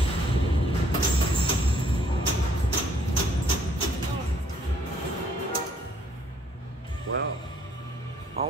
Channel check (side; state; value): both; normal; correlation 0.65